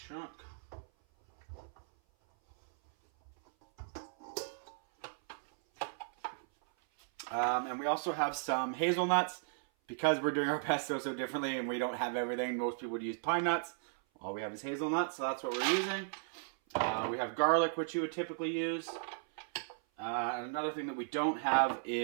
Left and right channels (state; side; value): silent; left; 54 dB below the other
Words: And we also have some hazelnuts. Because we're doing our pesto so differently and we don't have everything, most people would use pine nuts. All we have is hazelnuts, so that's what we're using. We have garlic, which you would typically use. And another thing that we don't have